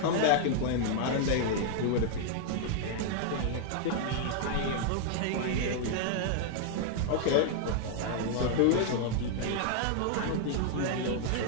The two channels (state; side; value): different; both; correlation 0.00